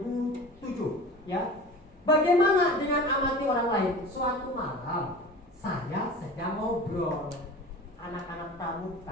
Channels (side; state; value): both; normal; correlation 0.37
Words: ya. Bagaimana dengan amati orang lain? Suatu malam saya sedang ngobrol anak-anak